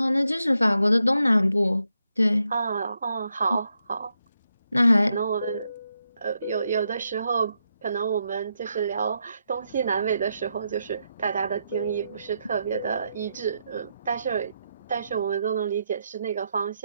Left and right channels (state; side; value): inverted; both; correlation -0.82